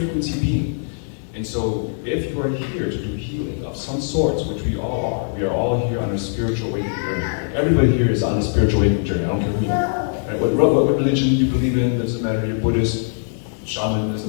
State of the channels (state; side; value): silent; right; digital silence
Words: being. And so if you are here to do healing of some sorts, which we all are, we are all here on a spiritual awakening journey. Everybody here is on a spiritual awakening journey, I don't care who you are. Right? What religion you believe in, doesn't matter, you're Buddhist, shaman, doesn't